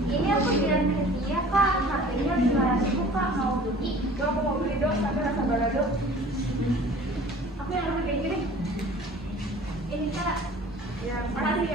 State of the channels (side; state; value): both; normal; correlation 0.46